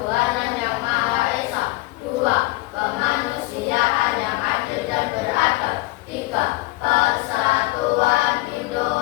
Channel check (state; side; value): quieter; right; 21.0 dB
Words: yang Maha Esa. Dua, kemanusiaan yang adil dan beradab. Tiga, persatuan